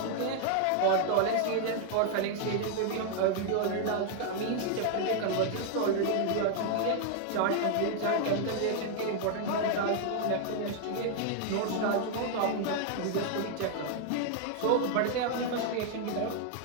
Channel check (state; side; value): different; both; correlation 0.00